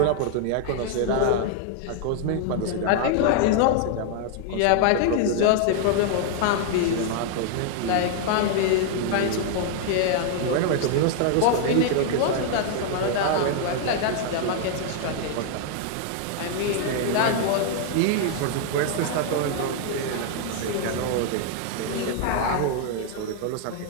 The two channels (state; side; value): different; both; correlation 0.00